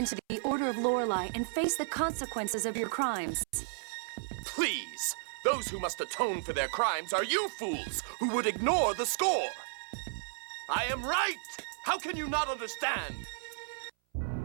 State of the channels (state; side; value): silent; left; 56 dB below the other